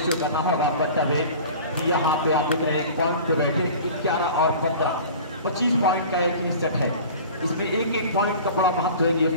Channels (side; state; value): both; inverted; correlation -0.41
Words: शो करना होगा। बतावे यहाँ पे आप देख रहे हैं पॉइंट पे बैठे 11 और 15 25 पॉइंट का एक ही सेट है। इसमें एक पॉइंट का बड़ा महत्व है। ये